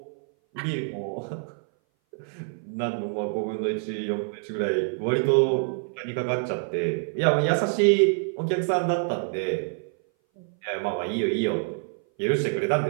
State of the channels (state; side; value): silent; left; 58 dB below the other